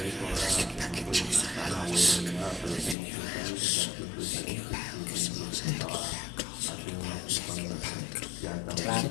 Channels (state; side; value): drops out; right; at 3.0 s